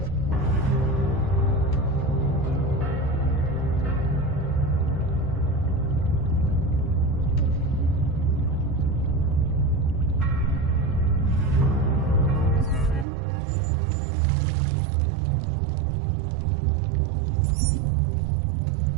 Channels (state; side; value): drops out; left; at 13.1 s